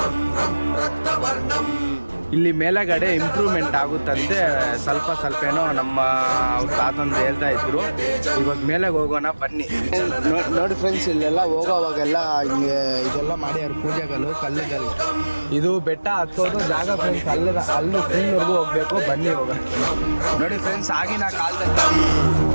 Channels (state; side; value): inverted; both; correlation -1.00